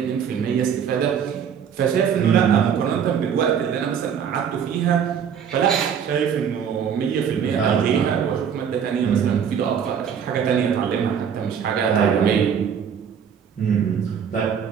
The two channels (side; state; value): left; quieter; 7.7 dB